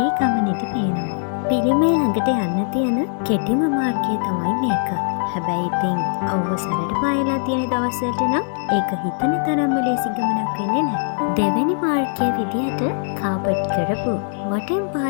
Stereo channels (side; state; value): right; silent; 60 dB below the other